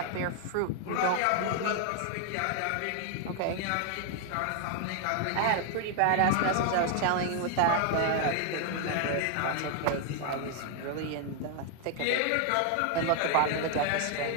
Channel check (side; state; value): both; different; correlation 0.00